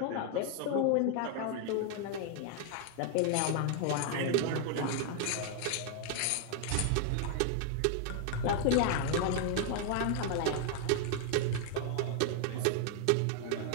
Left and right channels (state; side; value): different; both; correlation 0.00